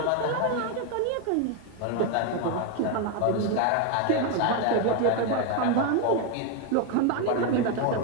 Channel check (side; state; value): both; different; correlation 0.01